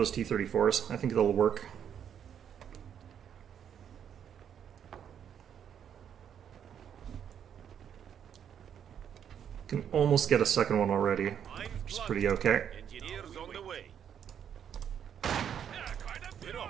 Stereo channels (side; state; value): left; quieter; 8.7 dB